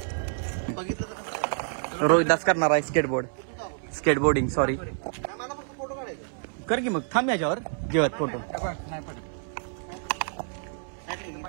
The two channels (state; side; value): silent; left; 59 dB below the other